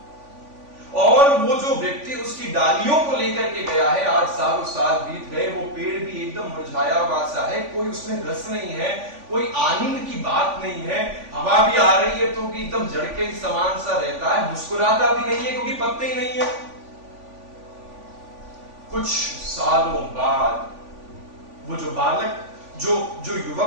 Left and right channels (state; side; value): late; left; 3.5 ms